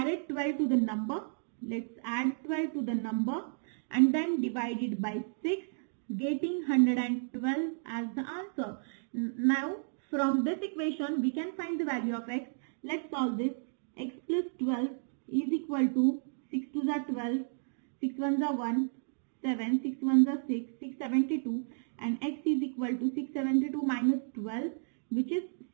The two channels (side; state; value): left; silent; digital silence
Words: 12 to the number. Let's add 12 to the number and then divide it by 6, getting 112 as the answer. Now, from this equation, we can find the value of x. Let's solve this. X plus 12 is equal to 6 2s are 12, 6 1s are 1, 7, 6 1s are 6, 672, and x is equal to 672 minus 12, which is